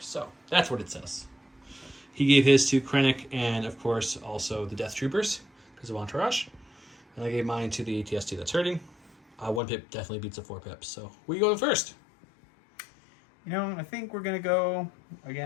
So that's what it says. He gave his to Krennic and, of course, also the Death Troopers because of Entourage. And I gave mine to the ATST that's hurting. 1 pip definitely beats a 4 pips. So where you going first? You know, I think we're going to go,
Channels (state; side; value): drops out; right; at 9.6 s